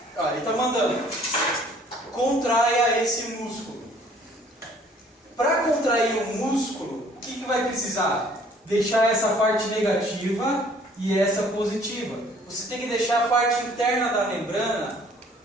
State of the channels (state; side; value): normal; both; correlation 0.57